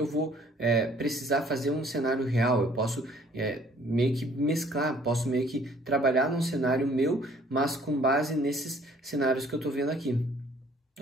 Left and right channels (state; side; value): normal; both; correlation 0.58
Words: vou precisar fazer um cenário real. Eu posso meio que mesclar, posso meio que trabalhar num cenário meu, mas com base nesses cenários que eu tô vendo aqui.